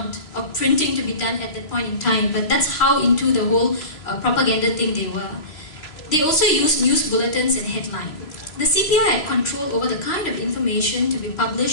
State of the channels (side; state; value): right; late; 3.1 ms